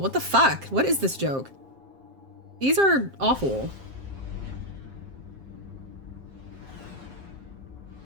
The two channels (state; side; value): late; left; 7.5 ms